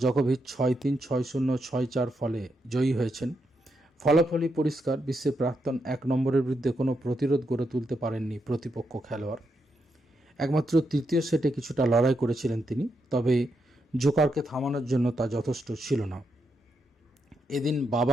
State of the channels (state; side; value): normal; both; correlation 0.82